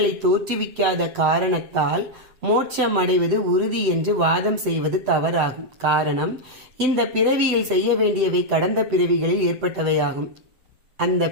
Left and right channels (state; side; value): late; left; 7.9 ms